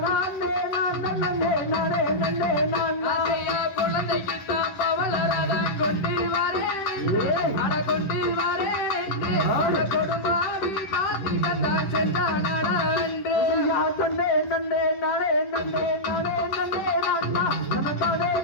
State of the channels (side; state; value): right; late; 10 ms